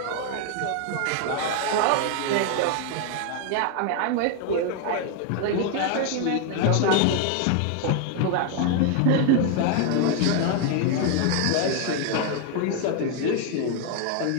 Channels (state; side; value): different; both; correlation 0.00